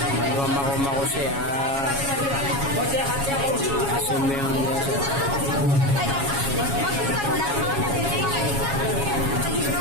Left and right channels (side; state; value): left; late; 7.2 ms